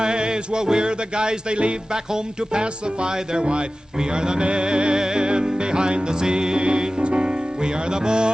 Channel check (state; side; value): normal; both; correlation 0.96